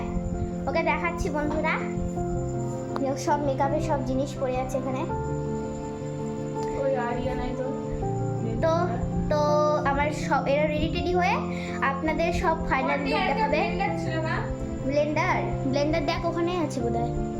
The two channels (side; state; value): both; identical; correlation 1.00